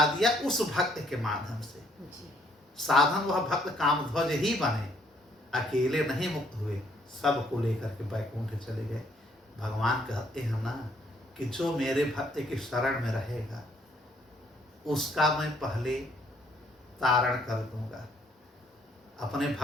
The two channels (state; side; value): normal; both; correlation 0.67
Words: दिया उस भक्त के माध्यम से। साधन वह भक्त कामध्वज ही बने, अकेले नहीं मुक्त हुए, सबको लेकर के बैकुंठ चले गए। भगवान कहते हैं ना कि जो मेरे भक्त की शरण में रहेगा उसका मैं पहले तारण कर दूंगा। अपने